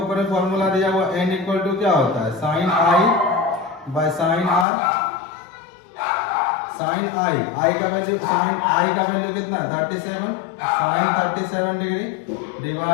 में फॉर्मूला दिया हुआ n इक्वल टू क्या होता है, sine I by sine R. Sine I का वैल्यू, साइन आई का वैल्यू कितना है 37, sine 37 degree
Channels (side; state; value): right; drops out; at 4.7 s